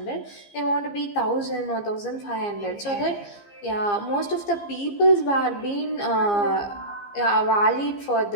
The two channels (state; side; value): late; right; 15 ms